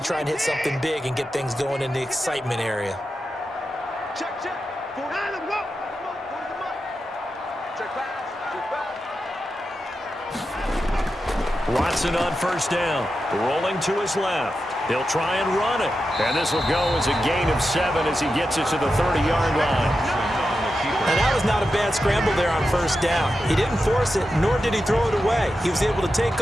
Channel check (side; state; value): both; normal; correlation 0.90